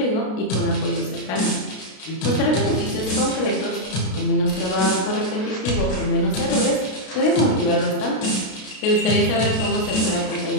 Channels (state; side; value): late; right; 32 ms